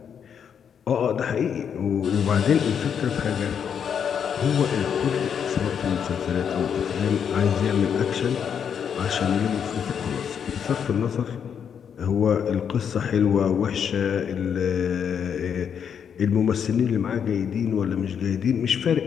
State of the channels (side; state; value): right; quieter; 7.7 dB